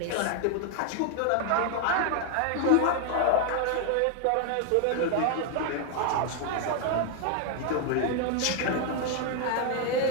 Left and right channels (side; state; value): both; different; correlation 0.00